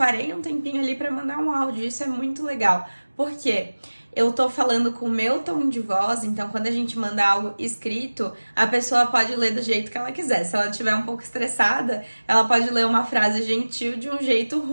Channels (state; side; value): inverted; both; correlation -1.00